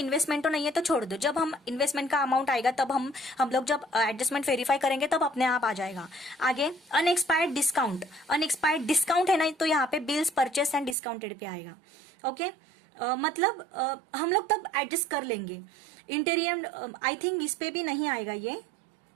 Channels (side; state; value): left; drops out; at 11.0 s